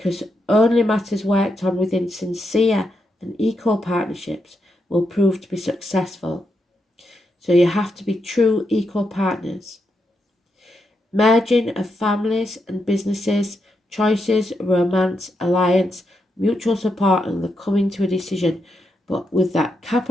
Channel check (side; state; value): both; normal; correlation 0.83